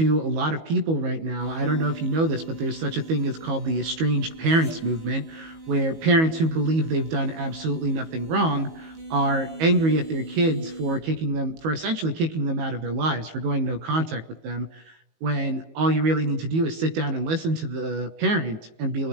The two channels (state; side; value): late; left; 19 ms